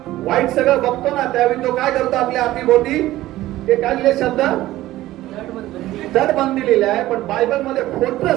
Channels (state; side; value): quieter; left; 15.7 dB